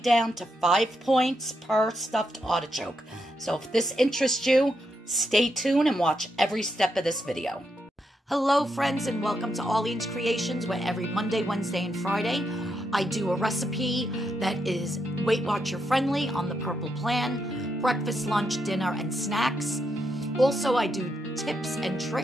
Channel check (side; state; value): both; normal; correlation 0.81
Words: to 5 points per stuffed artichoke. So if this interests you, stay tuned and watch every step of this video. Hello friends, and welcome to Arlene's Creations, where every Monday, Wednesday, and Friday I do a recipe that is Weight Watcher friendly on the Purple Plan, breakfast, lunch, dinner, and snacks. Also, I do tips and